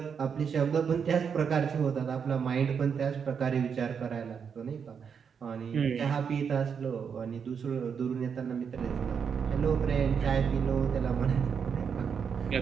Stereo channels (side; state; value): left; quieter; 6.8 dB